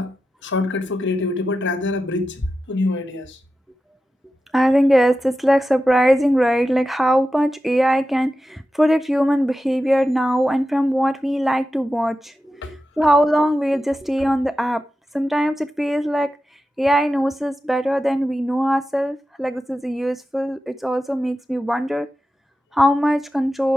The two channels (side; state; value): both; normal; correlation 0.92